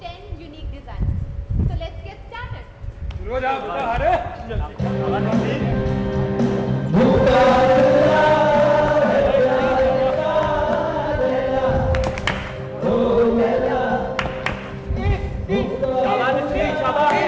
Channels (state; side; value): identical; both; correlation 1.00